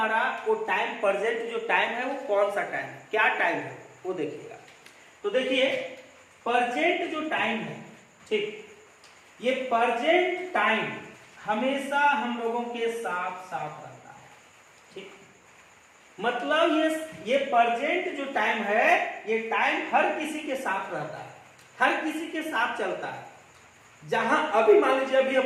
वो टाइम, प्रेजेंट जो टाइम है वो कौन सा टाइम है, क्या टाइम है वो देखिएगा। तो देखिए प्रेजेंट जो टाइम है, ठीक, ये प्रेजेंट टाइम हमेशा हम लोगों के साथ साथ रहता है, ठीक। मतलब ये प्रेजेंट जो टाइम है, ये टाइम हर किसी के साथ रहता है, हर किसी के साथ चलता है। जहां अभी मान लीजिए अभी हम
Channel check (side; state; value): both; identical; correlation 1.00